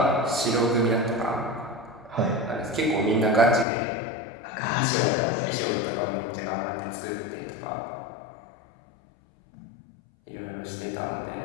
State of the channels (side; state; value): right; drops out; at 3.7 s